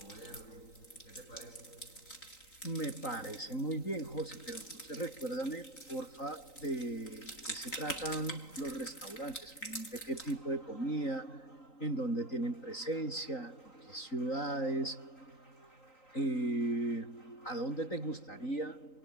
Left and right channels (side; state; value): right; late; 3.9 ms